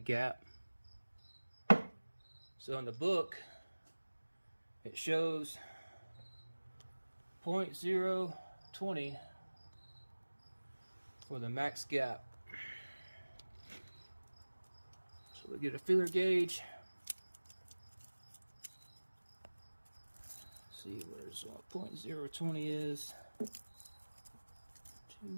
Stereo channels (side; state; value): both; inverted; correlation -1.00